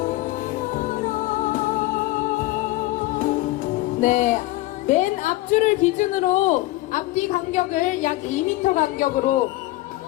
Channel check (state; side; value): quieter; right; 18.3 dB